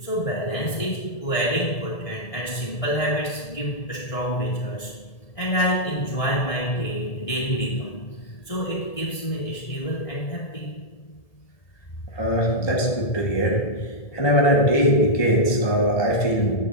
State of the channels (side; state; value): right; late; 1.8 ms